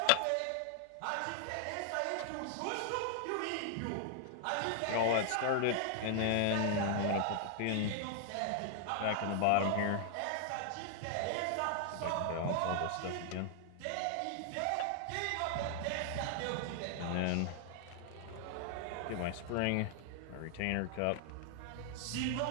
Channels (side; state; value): both; different; correlation 0.00